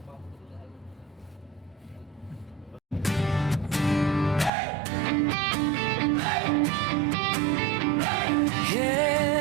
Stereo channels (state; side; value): drops out; left; at 4.5 s